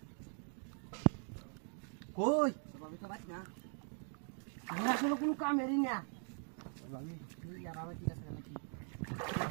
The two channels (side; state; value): left; silent; 50 dB below the other